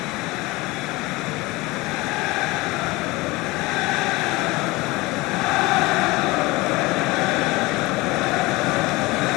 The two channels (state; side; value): quieter; right; 22.1 dB